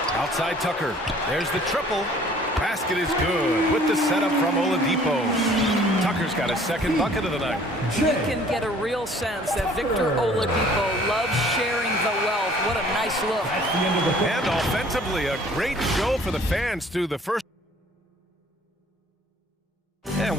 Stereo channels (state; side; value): normal; both; correlation 0.54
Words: Outside Tucker. There's the triple. Basket is good with the setup from Oladipo. Tucker's got his 2nd bucket of the night. You can get a real sense that Victor Oladipo loves sharing the wealth. What a nice look. And offensively, a great show for the fans through the first. And